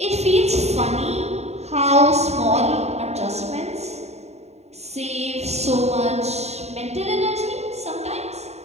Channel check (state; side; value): late; left; 0.31 ms